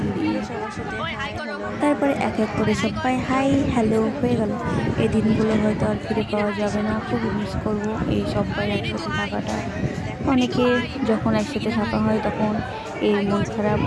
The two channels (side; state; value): both; identical; correlation 1.00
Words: তারপরে এক এক করে সবাই হাই হ্যালো হয়ে গেল। এই দিনগুলো হয়তো আর ফিরে পাওয়া যাবে না, খুব মিস করবো এই সবাই একসাথে থাকাটা। অনেকে যখন একসাথে থাকা হয় তখন এর মন খারাপ,